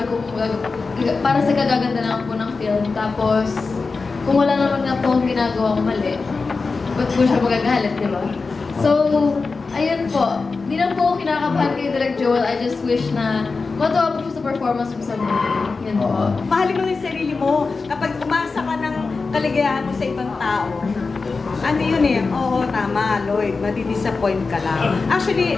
para sa kagaganda lang po ng film. Tapos, kung wala naman nga po akong ginagawa mali, ba't po siya magagalit, di ba? So, ayun po, hindi lang po ako kinakabahan kay Direk Joel. I just wish na matuwa po siya sa performance mo sa movie. Yun po. Mahalin mo yung sarili mo. Kapag umasa ka ng kaligayahan mo sa ibang tao, ano yun eh, oo, tama, Lloyd, madi-disappoint ka lang. Actually,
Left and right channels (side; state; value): right; quieter; 4.2 dB